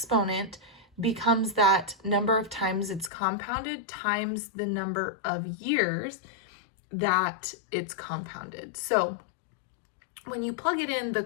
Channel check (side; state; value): right; drops out; at 3.1 s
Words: becomes that number of times it's compounded times the number of years that it's compounded. So when you plug it in,